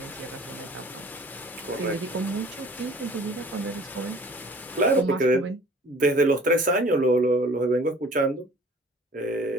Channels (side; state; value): both; normal; correlation 0.50